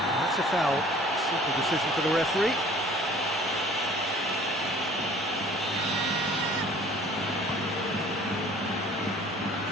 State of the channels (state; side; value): normal; both; correlation 0.51